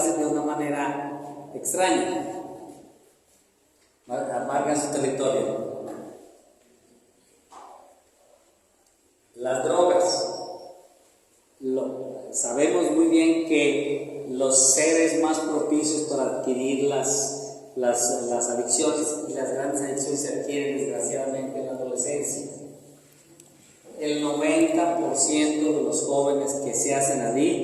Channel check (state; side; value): identical; both; correlation 1.00